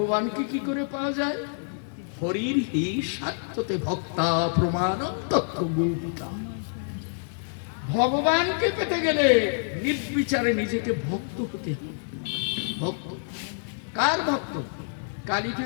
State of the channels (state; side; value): silent; right; digital silence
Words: কি করে পাওয়া যায়? হরির হি সাত্যতে ভক্তা প্রমাণ তত্ত্ব গোপিকা। ভগবানকে পেতে গেলে নির্বিচারে নিজেকে ভক্ত হতে হবে। ভক্ত কার ভক্ত? কালী